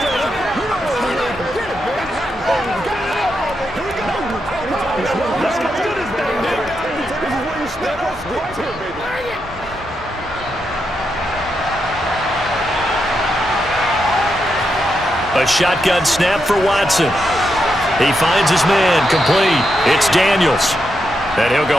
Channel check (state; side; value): normal; both; correlation 0.84